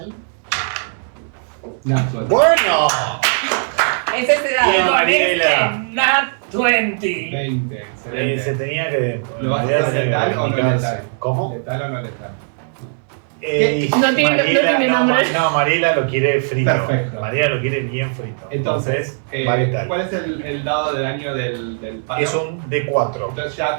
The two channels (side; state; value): left; silent; 67 dB below the other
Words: Natural. ¡Bueno! Es ese Bien. dado. Con Mariela. este, Nat 20. 20, Se excelente. tenía que. ¿Lo vas a hacer letal o no letal? ¿Cómo? ¿Letal o no letal? No tiene nombre. No, Mariela lo quiere frito. Perfecto. Mariela lo quiere bien frito. Entonces, va letal. ¿cuál es el dado de daño del palo? Es un D4. Entonces ya